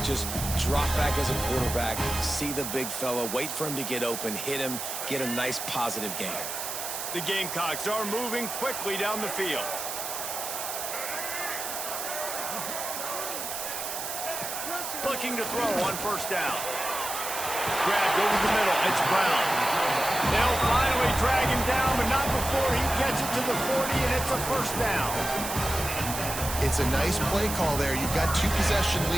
Just drop back as a quarterback, see the big fella, wait for him to get open, hit him, get a nice positive gain. The Gamecocks are moving quickly down the field. Looking to throw on 1st down. Grabbed over the middle. It's Brown. They'll finally drag him down, but not before he gets it to the 40, and it's a 1st down. It's a nice play call there. You've got 2-possession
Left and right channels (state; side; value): noise; right; hiss, 5 dB below the sound